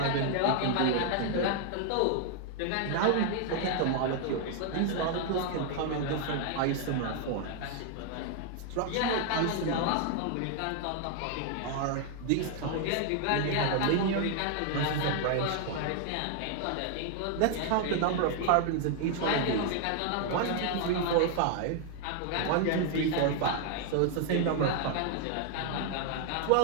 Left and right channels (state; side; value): different; both; correlation 0.00